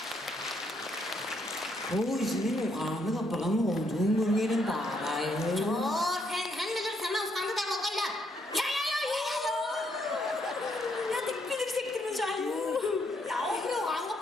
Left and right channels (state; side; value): normal; both; correlation 0.74